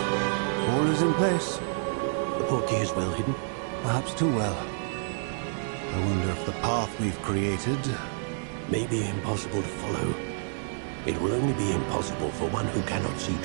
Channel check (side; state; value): left; silent; 59 dB below the other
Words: All is in place. The portkey is well hidden. Perhaps too well. I wonder if the path we've created... may be impossible to follow. It will only be impossible for one who cannot see